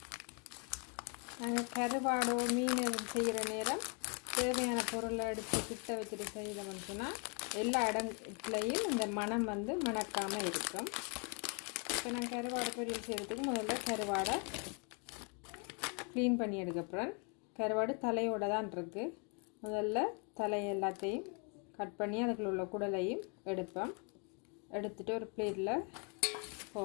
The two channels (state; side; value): quieter; right; 36.2 dB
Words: நாங்கள் கருவாடோ மீன் செய்கிற நேரம் தேவையான பொருளை எடுத்து கிட்ட வச்சுட்டு செய்யணும்னு சொன்னால் எல்லா இடத்துலையும் இந்த மணம் மணக்காமல் இருக்கும். இப்போ நான் கருவாடு பொரியல் செய்கிறதுக்கு முதல்ல கருவாடை க்ளீன் பண்ணி எடுக்கப்புறம் கருவாடு தலையோடு தான் இருக்குது. முதல்ல தலை எல்லாத்தையும் கட் பண்ணி அதுக்குள்ள உள்ள குடலையும் எடுத்துகிட்டு ஒரு பிளேட்டில்